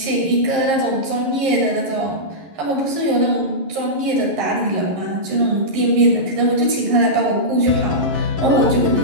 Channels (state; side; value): late; left; 11 ms